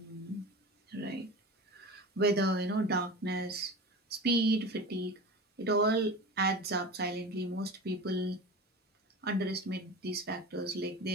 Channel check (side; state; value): both; normal; correlation 0.32